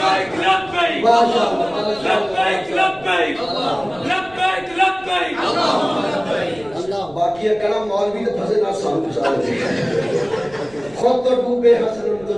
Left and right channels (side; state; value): right; noise; rumble, 23 dB below the sound